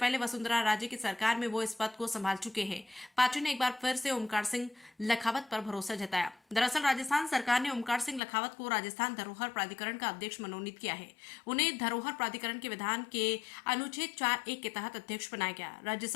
वसुंधरा राजे की सरकार में वो इस पद को संभाल चुके हैं। पार्टी ने एक बार फिर से ओमकार सिंह लखावत पर भरोसा जताया। दरअसल राजस्थान सरकार ने ओमकार सिंह लखावत को राजस्थान धरोहर प्राधिकरण का अध्यक्ष मनोनीत किया है। उन्हें धरोहर प्राधिकरण के विधान के अनुच्छेद 4(1) के तहत अध्यक्ष बनाया गया। राज्य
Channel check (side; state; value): right; drops out; at 8.2 s